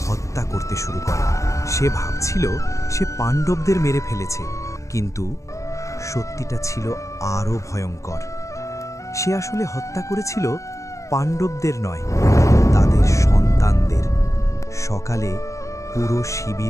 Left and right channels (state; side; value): late; right; 0.15 ms